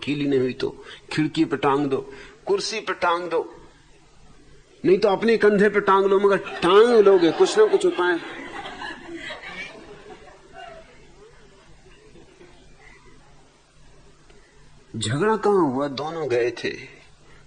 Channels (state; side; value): identical; both; correlation 1.00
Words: नहीं हुई तो खिड़की पे टांग दो, कुर्सी पे टांग दो, नहीं तो अपने कंधे पे टांग लो, मगर टांग लोगे कुछ ना कुछ उपाय। झगड़ा कहां हुआ, दोनों गए थे